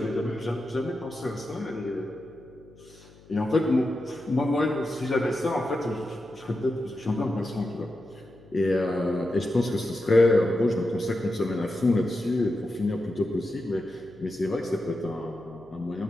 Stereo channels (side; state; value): left; noise; hum, 24 dB below the sound